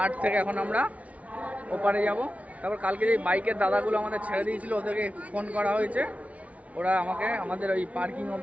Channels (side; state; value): left; late; 0.067 ms